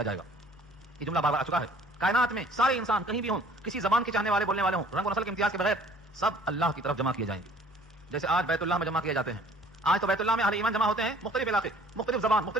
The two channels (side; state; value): both; normal; correlation 0.54